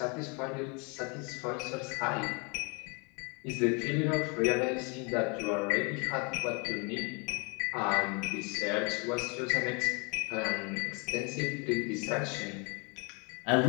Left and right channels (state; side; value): quieter; right; 32.6 dB